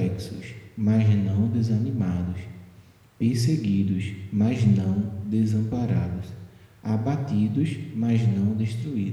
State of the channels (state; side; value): identical; both; correlation 1.00